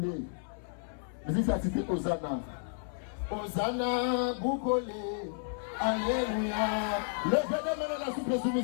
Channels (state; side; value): silent; right; 56 dB below the other